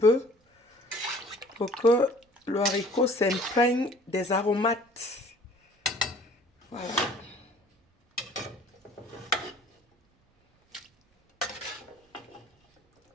pour que le haricot s'imprègne des aromates. Voilà.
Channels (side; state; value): both; normal; correlation 0.52